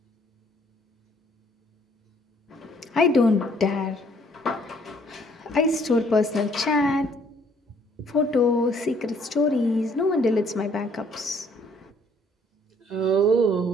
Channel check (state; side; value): normal; both; correlation 0.63